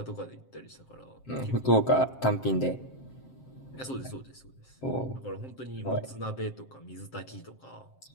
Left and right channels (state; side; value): late; right; 7.6 ms